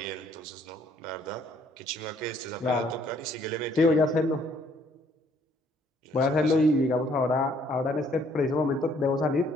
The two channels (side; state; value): both; normal; correlation 0.64